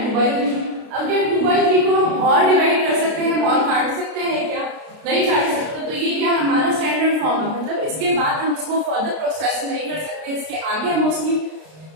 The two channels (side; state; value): left; late; 32 ms